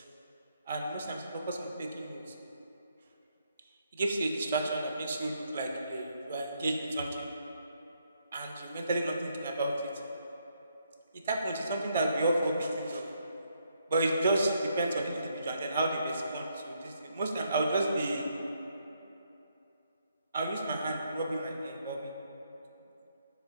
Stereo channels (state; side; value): inverted; both; correlation -0.75